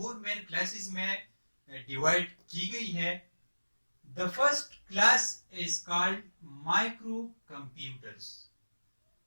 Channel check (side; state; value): both; inverted; correlation -1.00